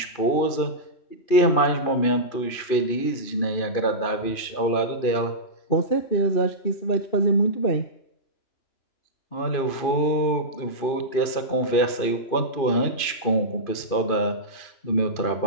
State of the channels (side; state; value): right; late; 2.5 ms